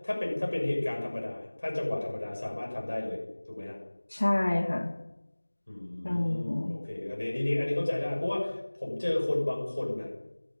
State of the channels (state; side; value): inverted; both; correlation -1.00